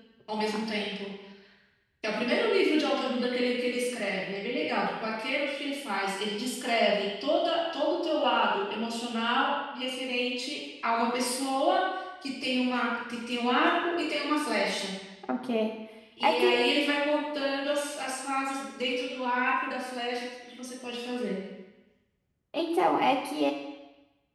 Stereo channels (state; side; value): identical; both; correlation 1.00